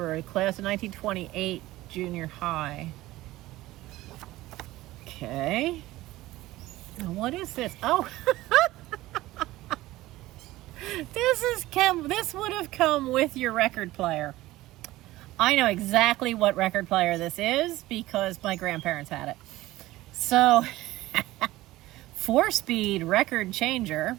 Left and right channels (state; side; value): quieter; left; 17.2 dB